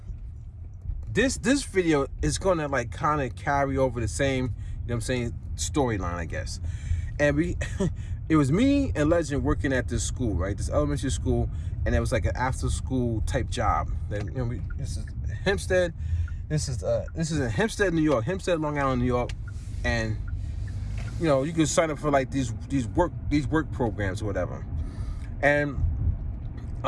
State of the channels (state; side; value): identical; both; correlation 1.00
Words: this video is gonna like kind of carry over the same, you know what I'm saying, storyline, I guess. And it was me and Legend working at this school, right? This elementary school, and it was like an after school type job. That, you know, this is Hempstead. This is in Hempstead, New York, Hempstead, Long Island, New York. And you know, you can sign up for like these work programs or whatever. And